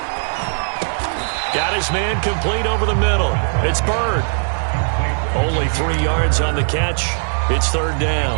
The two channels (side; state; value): left; silent; digital silence